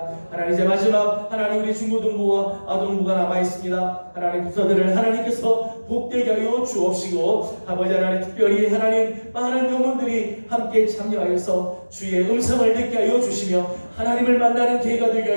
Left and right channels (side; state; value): both; inverted; correlation -1.00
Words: 하나님 이제 마지막 하나님 우리 중고등부와 아동부가 남아있습니다. 하나님 부서들을 하나님께서 복되게 하여 주옵시고 아버지 하나님 특별히 하나님 많은 영혼들이 함께 참여하여서 주의 음성을 듣게 하여 주시며 하나님을 만나는 기회가 되게